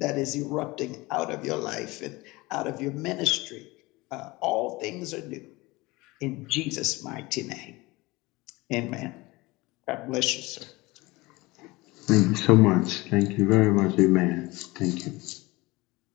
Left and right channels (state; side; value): quieter; right; 22.1 dB